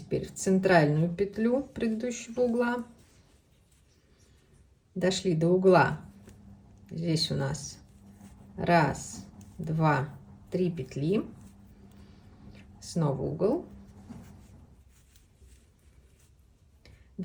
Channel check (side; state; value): both; identical; correlation 1.00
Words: в центральную петлю предыдущего угла. Дошли до угла. Здесь у нас 1, 2, 3 петли. Снова угол.